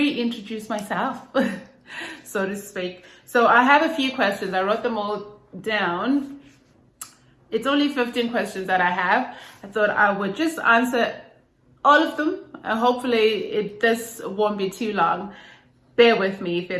myself, so to speak. So I have a few questions. I wrote them all down. It's only 15 questions that I have. I thought I would just answer all of them. And hopefully this won't be too long. Bear with me if it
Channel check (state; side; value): identical; both; correlation 1.00